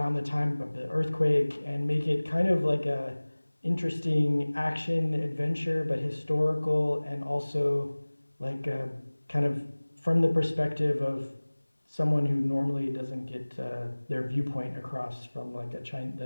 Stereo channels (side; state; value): both; inverted; correlation -1.00